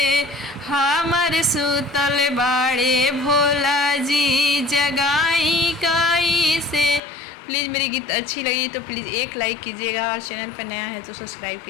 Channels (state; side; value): drops out; right; at 7.0 s